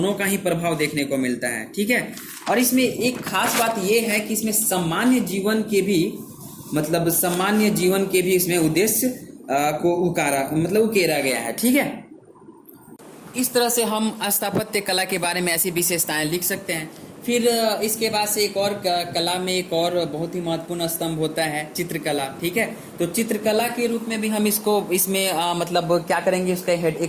का ही प्रभाव देखने को मिलता है। ठीक है, और इसमें एक खास बात यह है कि इसमें सामान्य जीवन के भी मतलब सामान्य जीवन के भी इसमें उद्देश्य को उकेरा गया है। ठीक है, इस तरह से हम स्थापत्य कला के बारे में ऐसी विशेषताएं लिख सकते हैं। फिर इसके बाद से एक और कला में एक और बहुत ही महत्वपूर्ण स्तंभ होता है चित्रकला। ठीक है, तो चित्रकला के रूप में भी हम इसको इसमें मतलब क्या करेंगे, उसका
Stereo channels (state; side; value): identical; both; correlation 1.00